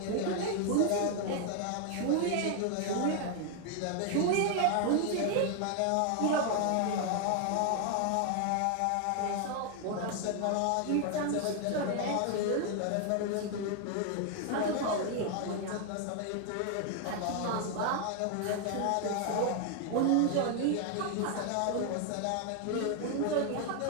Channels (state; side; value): different; both; correlation 0.00